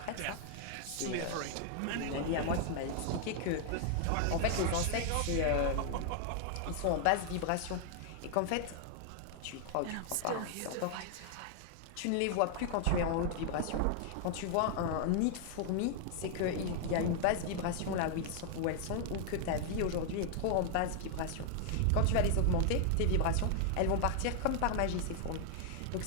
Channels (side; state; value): both; different; correlation 0.00